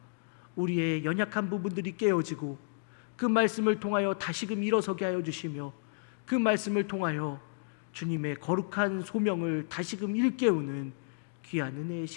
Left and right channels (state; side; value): silent; right; digital silence